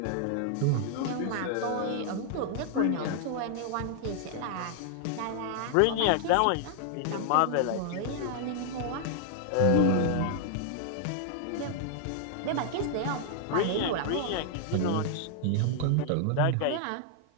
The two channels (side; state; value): both; different; correlation -0.01